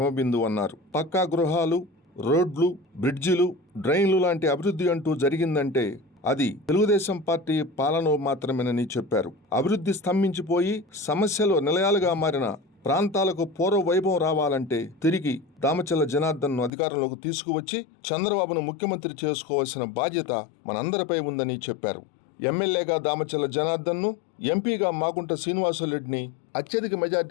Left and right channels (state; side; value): drops out; right; at 16.7 s